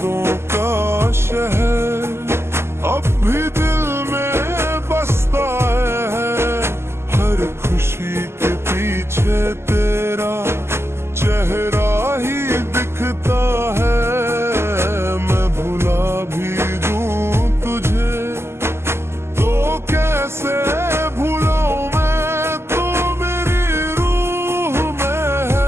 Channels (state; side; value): late; left; 0.12 ms